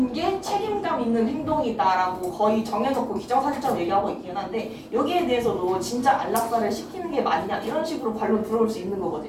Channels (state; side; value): identical; both; correlation 1.00